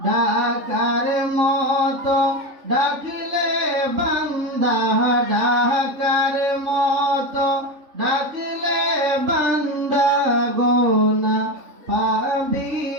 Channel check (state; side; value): late; left; 3.8 ms